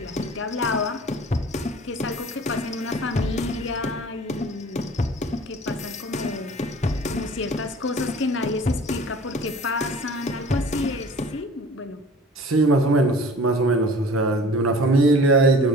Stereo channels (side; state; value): both; normal; correlation 0.45